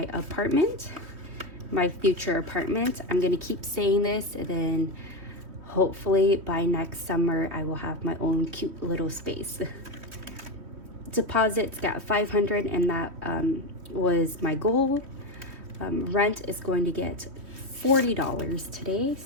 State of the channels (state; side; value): late; left; 3.2 ms